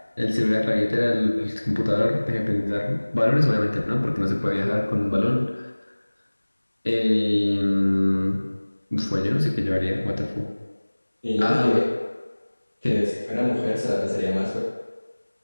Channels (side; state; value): both; inverted; correlation -1.00